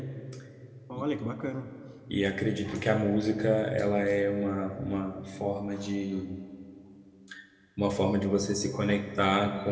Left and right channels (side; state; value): both; identical; correlation 1.00